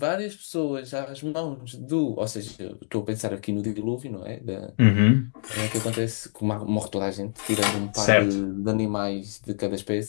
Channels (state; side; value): silent; right; digital silence